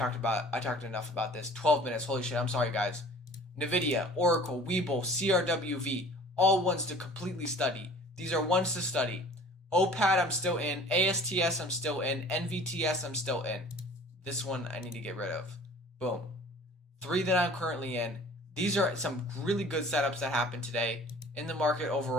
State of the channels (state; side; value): normal; both; correlation 0.47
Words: enough about this. 12 minutes. Holy shit. I'm sorry, guys. Nvidia, Oracle, Webull, CRWV, all ones to completely study. These are ones to study. OPAD I'm still in. ASTS I'm still in. NVTS I'm still in. This one I need to get rid of. Boom. 3 that I'm currently in. These are some really good setups that happened today. In the market